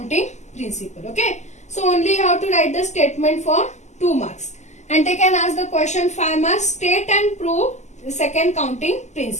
principle. Okay, so only you have to write the statement for 2 marks, and they can ask the question 5 marks. State and prove the second counting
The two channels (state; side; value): late; right; 0.33 ms